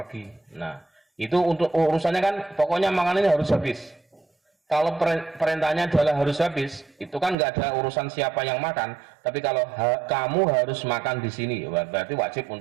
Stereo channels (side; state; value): left; drops out; at 7.4 s